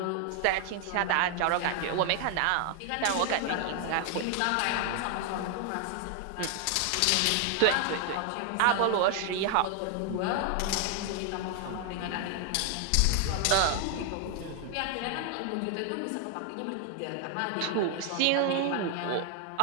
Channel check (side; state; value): both; different; correlation 0.00